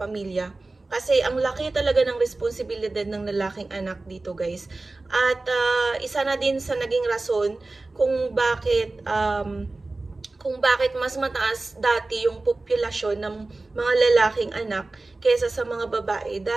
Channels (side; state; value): left; quieter; 3.2 dB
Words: Kasi ang laki talaga ng responsibilidad ng lalaking anak dito guys. At isa na din sa naging rason kung bakit mas mataas dati yung populasyon ng mga lalaking anak kaysa sa mga babae.